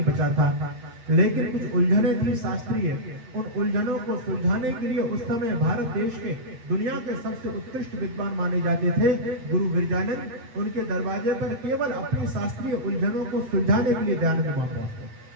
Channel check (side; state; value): left; late; 8.4 ms